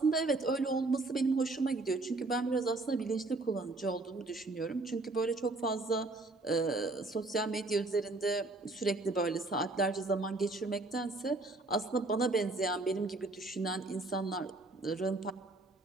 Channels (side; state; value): left; quieter; 3.1 dB